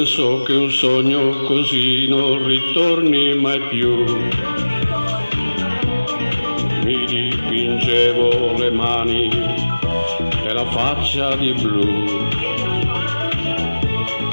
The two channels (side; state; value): both; inverted; correlation -1.00